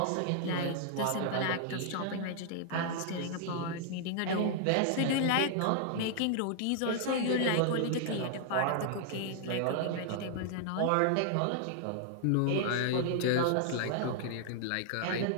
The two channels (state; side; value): different; both; correlation -0.01